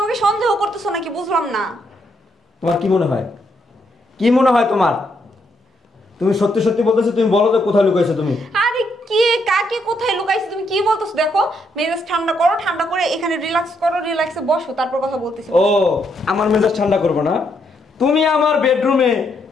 আমাকে সন্দেহ করতেছো নাকি? বুঝলাম না। তোমার কি মনে হয়? কি মনে হয় তোমার? তুমি সত্যি সত্যি বলতেছো? তুমি বলো তো কোথায় লুকাইছো তুমি? আরে কে কাকে কাকে কোথায় লুকাইছি তুমি কি বলতেছো? দেখো মেজাজ ঠান্ডা করো, ঠান্ডা করে এখানে রিল্যাক্স করো, রিল্যাক্সে বসো, তারপর কথা বলতেছি। ও আমার মেজাজ ঠান্ডা করবো না? তুমি আমার বেডরুমে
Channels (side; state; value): both; normal; correlation 0.76